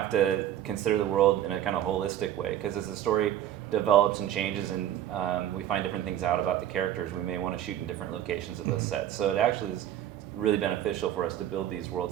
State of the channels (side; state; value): left; quieter; 11.6 dB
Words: to consider the world in a kind of holistic way because as the story develops and changes and we find different things out about the characters, we may want to shoot in different locations of those sets. So it actually is really beneficial for us to build these